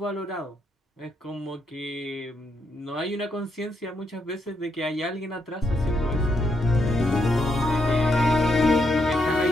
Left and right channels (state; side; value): normal; both; correlation 0.79